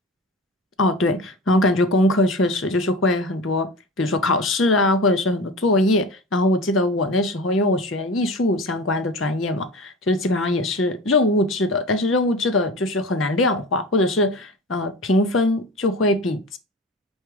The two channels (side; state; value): both; normal; correlation 0.33